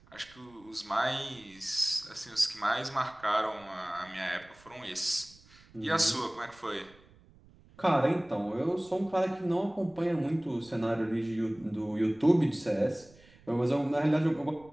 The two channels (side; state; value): right; noise; rumble, 26 dB below the sound